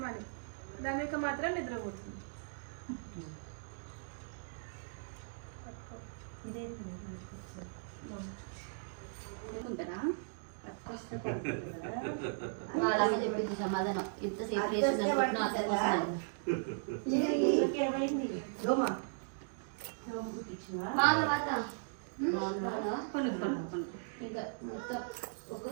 మనీ. ధన్విక మాత్రం నిద్రపోతుంది. చెప్పింది సమాధానం ఇంతసేపు ఇంకా మొత్తం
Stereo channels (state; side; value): silent; left; digital silence